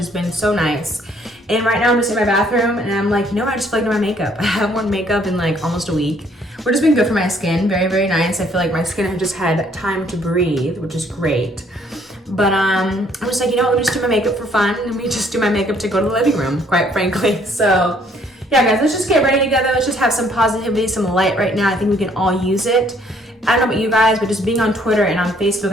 been so nice. And right now, I'm just in my bathroom, and I'm like, I just feel like doing my makeup. I haven't worn makeup in like almost a week. We're just been good for my skin, very, very nice. I feel like my skin has just had time to breathe, which is great. But I'm just like, let me just do my makeup for fun. Let me just do my makeup to go to the living room, quite frankly. So, yeah, guys, let's just get ready together. Let's just have some positivity, some light right now. I think we can all use it. I don't know about you guys, but just being on Twitter and on Facebook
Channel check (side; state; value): both; normal; correlation 0.64